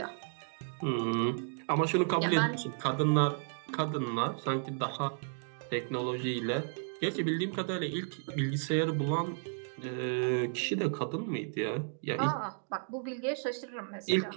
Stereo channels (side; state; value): left; silent; digital silence